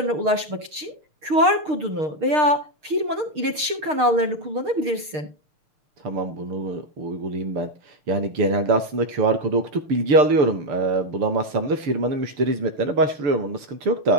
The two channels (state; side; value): late; left; 6.5 ms